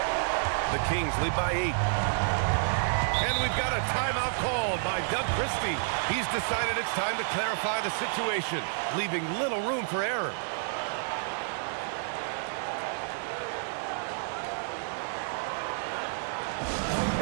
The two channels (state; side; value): silent; left; digital silence